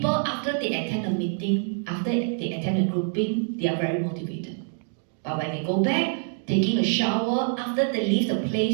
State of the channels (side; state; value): left; silent; 61 dB below the other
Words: after they attend a meeting, after they attend a grouping, they are very motivated. But when they go back, taking a shower, after they leave the